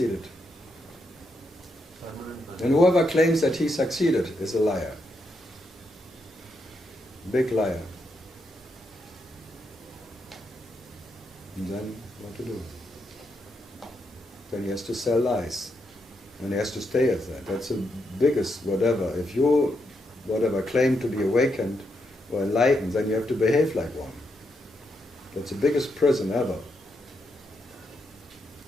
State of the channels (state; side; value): normal; both; correlation 0.81